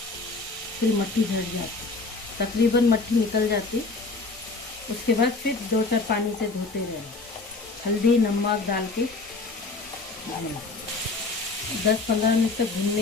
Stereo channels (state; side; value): quieter; right; 3.7 dB